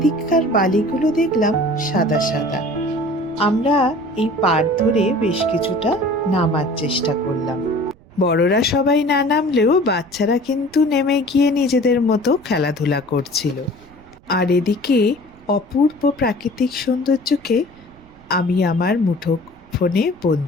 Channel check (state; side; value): noise; right; rumble, 26 dB below the sound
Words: বালিগুলো দেখলাম সাদা সাদা। আমরা এই পাড় ধরে বেশ কিছুটা নামার চেষ্টা করলাম। বড়রা সবাই না নামলেও বাচ্চারা কিন্তু নেমে গিয়ে নিজেদের মতো খেলাধুলা করছিল। আর এদিকে অপূর্ব প্রাকৃতিক সৌন্দর্যকে আমি আমার মুঠো ফোনে